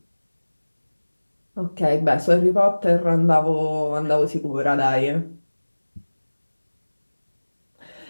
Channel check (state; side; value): inverted; both; correlation -1.00